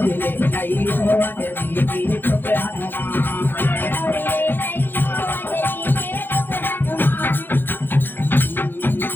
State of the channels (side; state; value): right; late; 0.098 ms